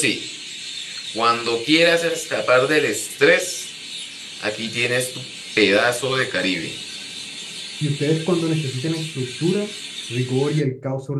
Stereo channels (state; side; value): identical; both; correlation 1.00